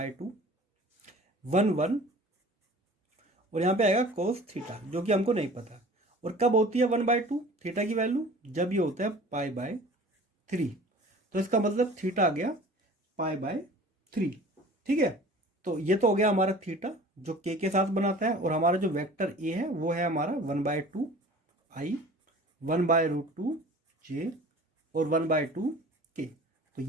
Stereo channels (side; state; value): both; normal; correlation 0.44